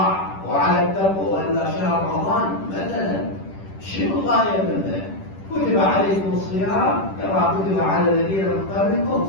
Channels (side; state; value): right; late; 10 ms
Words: وعلى التقوى. وإلا شهر رمضان مثلا شنو الغاية منه؟ كتب عليكم الصيام كما كتب على الذين من